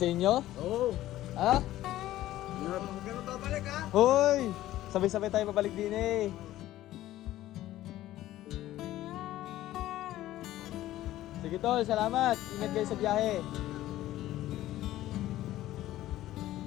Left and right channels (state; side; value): quieter; right; 14.7 dB